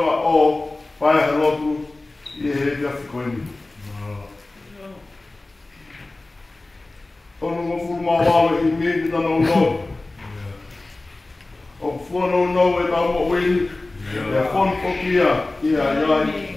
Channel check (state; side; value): quieter; right; 3.0 dB